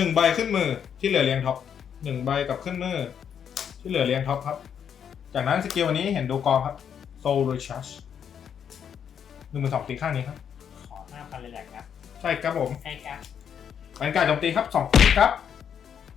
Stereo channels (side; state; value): right; quieter; 8.1 dB